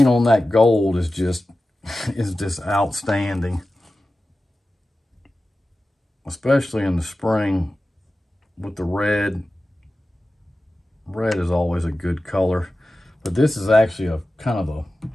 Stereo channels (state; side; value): normal; both; correlation 0.95